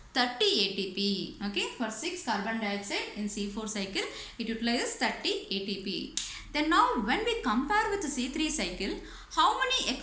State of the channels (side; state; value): both; identical; correlation 1.00